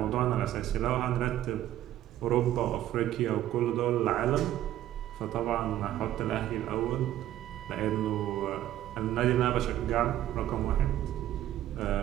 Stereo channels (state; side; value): quieter; left; 12.9 dB